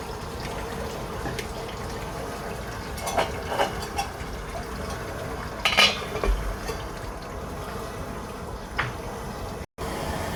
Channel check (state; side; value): identical; both; correlation 1.00